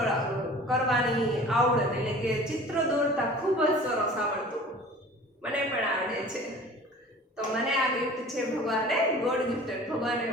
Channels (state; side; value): normal; both; correlation 0.44